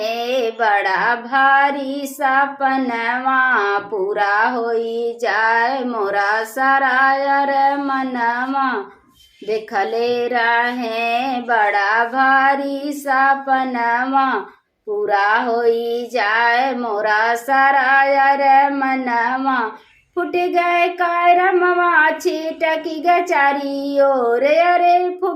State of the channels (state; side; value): identical; both; correlation 1.00